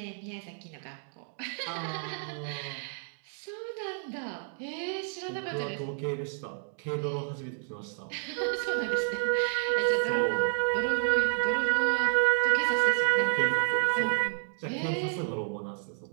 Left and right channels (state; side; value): silent; left; 58 dB below the other